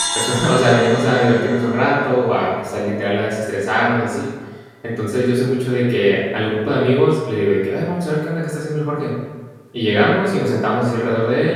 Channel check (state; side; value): identical; both; correlation 1.00